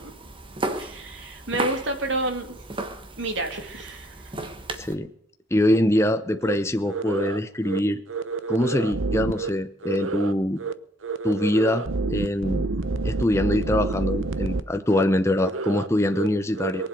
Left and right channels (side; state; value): both; normal; correlation 0.65